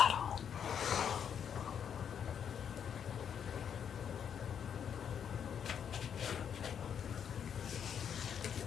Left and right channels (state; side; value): quieter; right; 8.1 dB